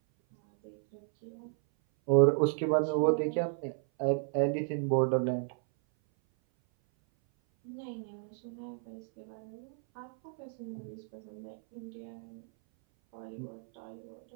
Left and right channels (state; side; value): silent; left; 56 dB below the other